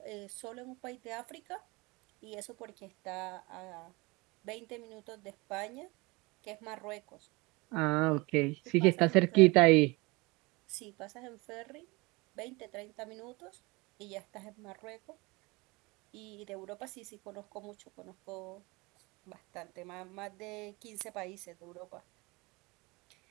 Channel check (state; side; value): quieter; left; 24.8 dB